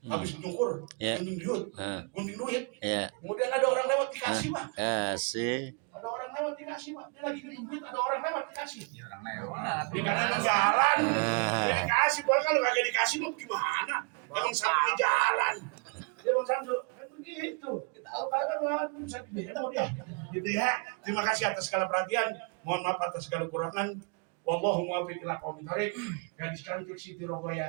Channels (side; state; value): left; quieter; 35.0 dB